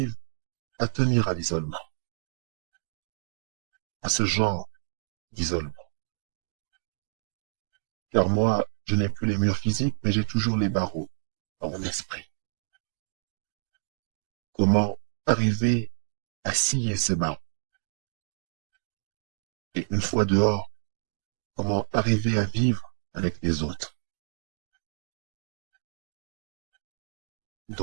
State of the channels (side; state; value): left; silent; digital silence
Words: à tenir à l'isolement, à ce genre d'isolement. Car moi, je n'ai plus les murs physiques, mais j'ai toujours les barreaux dans mon esprit. Comment arriver à scier ces barreaux? Et une fois dehors, comment arriver à vivre avec les autres?